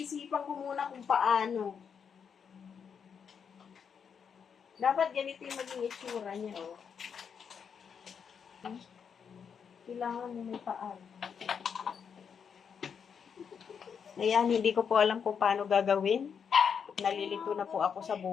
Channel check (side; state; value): right; quieter; 6.9 dB